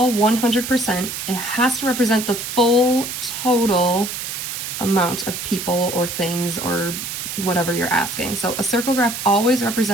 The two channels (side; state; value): right; noise; hiss, 6 dB below the sound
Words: 100%. It has to represent the full total amount of people or things or whatever you're asking. So a circle graph always